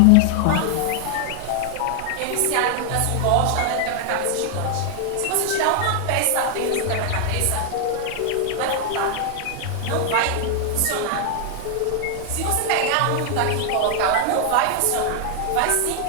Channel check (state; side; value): different; both; correlation 0.00